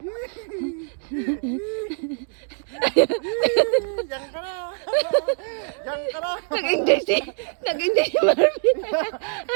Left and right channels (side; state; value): left; silent; 56 dB below the other